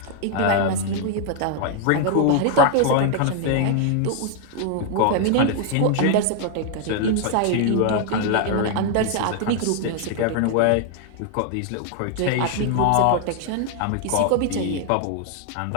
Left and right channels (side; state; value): both; different; correlation 0.00